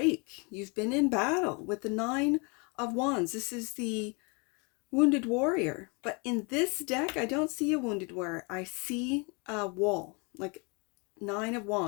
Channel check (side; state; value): right; quieter; 31.8 dB